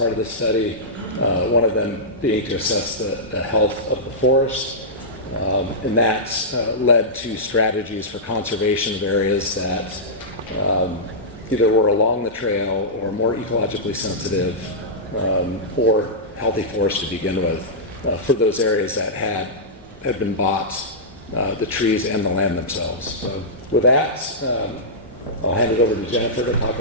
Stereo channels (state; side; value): normal; both; correlation -0.14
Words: of this study, one of them being to assess the health of the forest. And that led to strategies for conservation of areas that either were along the trail or more ecologically sensitive or healthy forest to begin with for those areas that had been bought, the trees and the land themselves. So with that, I'll hand it over to Jennifer to talk